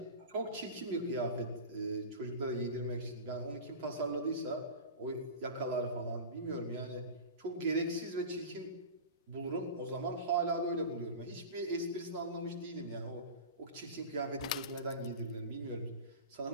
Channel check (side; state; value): both; inverted; correlation -0.31